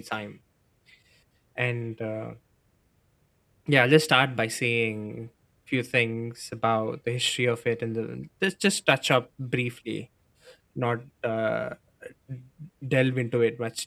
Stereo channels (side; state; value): both; identical; correlation 1.00